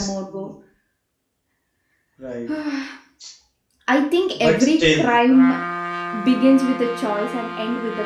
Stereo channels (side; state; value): both; identical; correlation 1.00